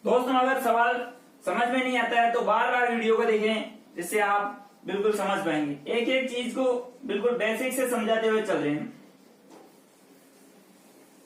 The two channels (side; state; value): both; identical; correlation 1.00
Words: दोस्तों अगर सवाल समझ में नहीं आता है तो बार बार वीडियो को देखें, जिससे आप बिल्कुल समझ पाएंगे। एक एक चीज को बिल्कुल बेसिक से समझाते हुए चल रहे हैं।